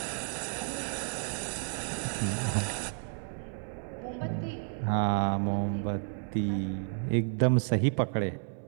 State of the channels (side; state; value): left; silent; 57 dB below the other